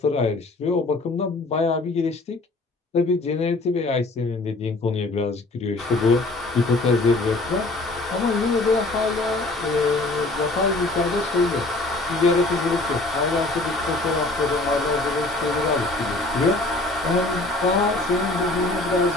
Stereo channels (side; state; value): right; quieter; 3.0 dB